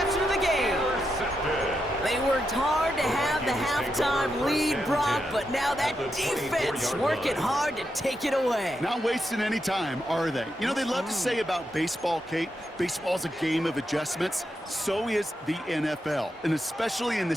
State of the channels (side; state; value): both; normal; correlation 0.84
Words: of the game. They worked hard to have the halftime lead, Brock, but now that defense working hard to take it away. Not wasting any time, are they? You know, they love to say about baseball, Kate, baseball's a game of adjustments. So is the NFL, and especially in the